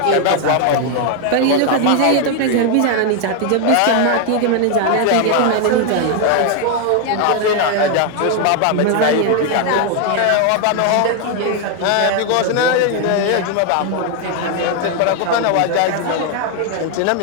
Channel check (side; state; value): both; different; correlation 0.01